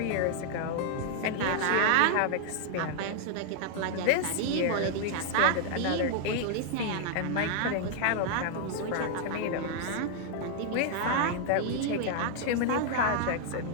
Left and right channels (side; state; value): both; different; correlation 0.00